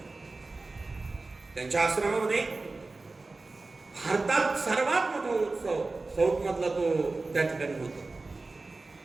त्यांच्या आश्रमामध्ये भारतात सर्वात मोठा उत्सव साऊथ मधला तो त्या ठिकाणी होतो.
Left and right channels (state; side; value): quieter; left; 3.5 dB